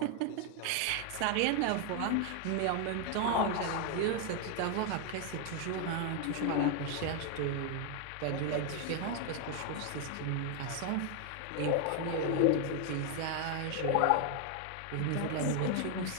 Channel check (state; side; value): different; both; correlation 0.01